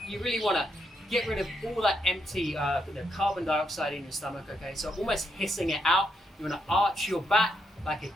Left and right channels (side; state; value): both; normal; correlation 0.79